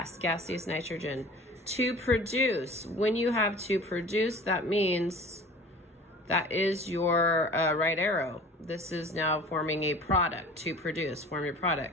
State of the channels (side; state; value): both; normal; correlation 0.43